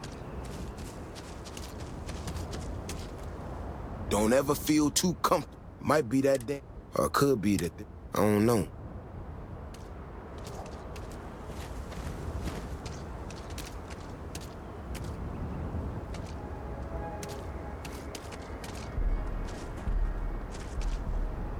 Don't ever feel too comfortable. Might be that day, or it could be that I don't know.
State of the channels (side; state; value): both; identical; correlation 1.00